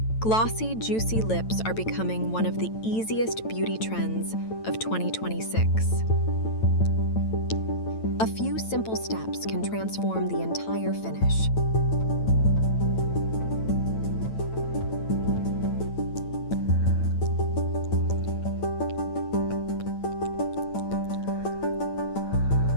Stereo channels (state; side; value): late; right; 9.0 ms